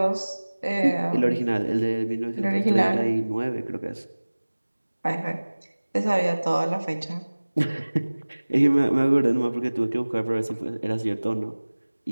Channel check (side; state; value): both; inverted; correlation -1.00